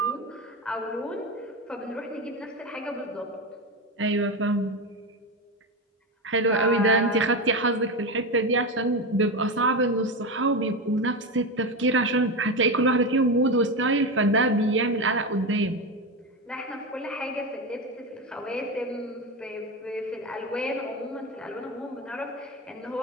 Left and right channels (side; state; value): both; normal; correlation 0.17